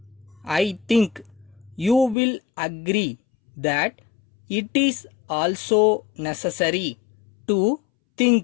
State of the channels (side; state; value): right; drops out; at 2.1 s